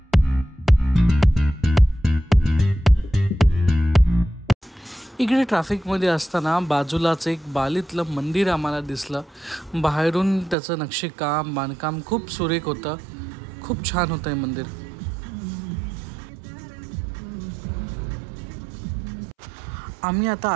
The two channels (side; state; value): left; drops out; at 10.6 s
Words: इकडे ट्रॅफिकमध्ये असताना बाजूलाच एक बालीतलं मंदिर आम्हाला दिसलं. बाहेरून त्याचं नक्षीकाम बांधकाम खूप सुरेख होतं, खूप छान होतं हे मंदिर. आम्ही आता